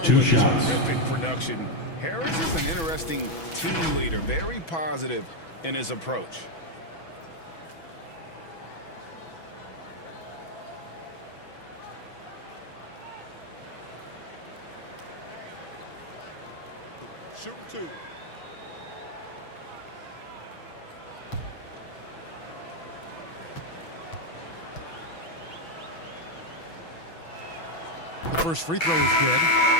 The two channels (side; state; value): right; late; 6.1 ms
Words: 2 with shots. terrific production, Harris is an interesting team leader, very positive in his approach. Shooting 2. The first free throw is good.